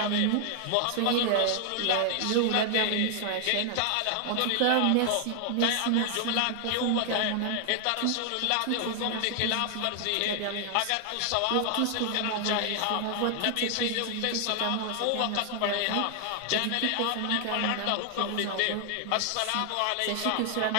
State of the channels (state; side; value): different; both; correlation 0.00